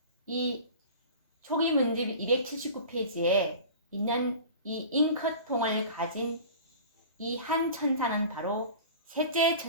이 초기 문집 279페이지에 있는 이 잉크통을 가진 이 한 천사는 바로 셋째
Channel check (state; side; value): inverted; both; correlation -0.38